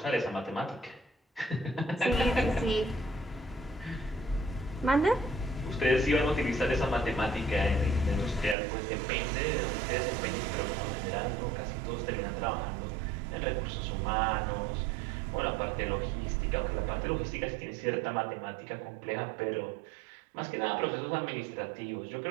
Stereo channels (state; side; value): drops out; left; at 8.6 s